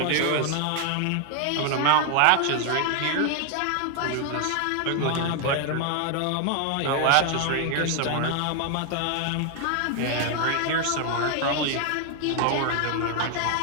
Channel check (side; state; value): both; different; correlation 0.01